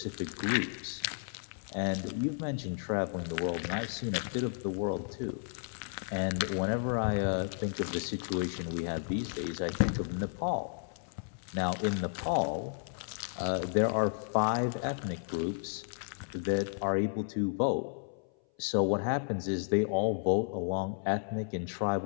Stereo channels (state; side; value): silent; right; 56 dB below the other